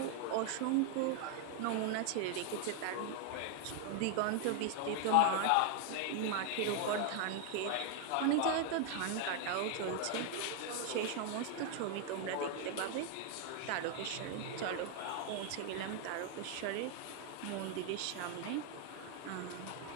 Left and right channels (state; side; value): different; both; correlation 0.00